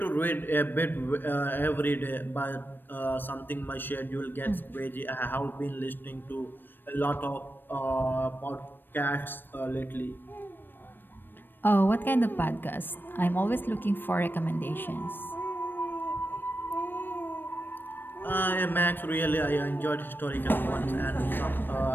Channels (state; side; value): late; right; 0.094 ms